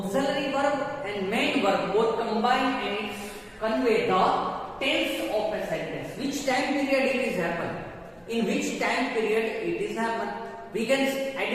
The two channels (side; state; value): both; identical; correlation 1.00